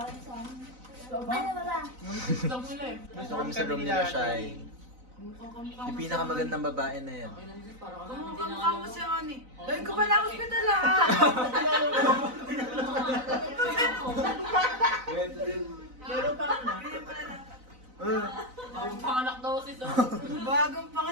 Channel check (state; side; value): late; left; 4.0 ms